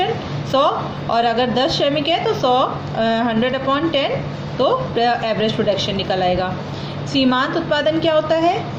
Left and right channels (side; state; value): both; identical; correlation 1.00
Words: 100 और अगर 10 श्रमिक है तो 100/10 तो एवरेज प्रोडक्शन निकल आएगा। सीमांत उत्पादन क्या होता है?